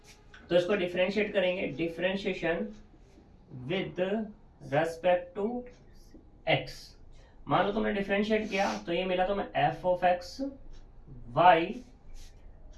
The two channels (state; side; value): identical; both; correlation 1.00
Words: तो इसको डिफरेंशिएट करेंगे, differentiation with respect to x। मान लो तुमने डिफरेंशिएट किया तो ये मिला तुम्हें f of x y